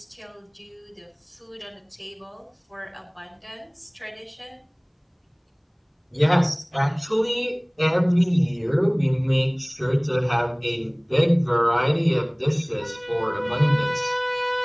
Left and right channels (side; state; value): both; identical; correlation 1.00